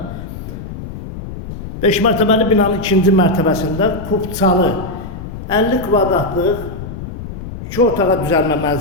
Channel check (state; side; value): noise; left; rumble, 10 dB below the sound